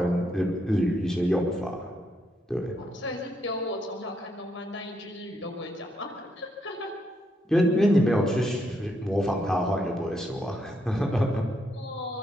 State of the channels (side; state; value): both; normal; correlation 0.77